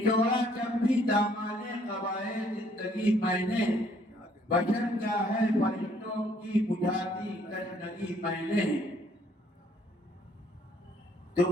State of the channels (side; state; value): both; normal; correlation 0.64